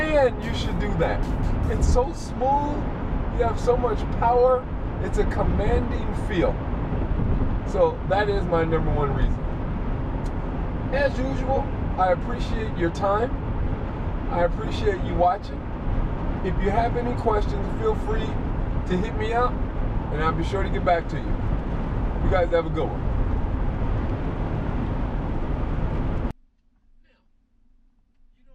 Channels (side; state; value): both; identical; correlation 1.00